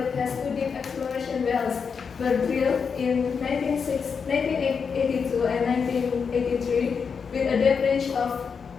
has two deep exploration wells were drilled in 1982 and 1983 with a depth range of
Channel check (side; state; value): right; quieter; 6.0 dB